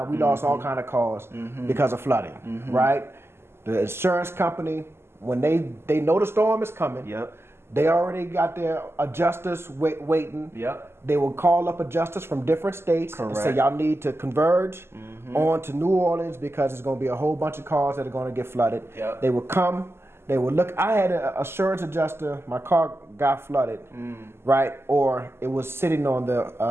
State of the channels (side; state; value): left; late; 0.12 ms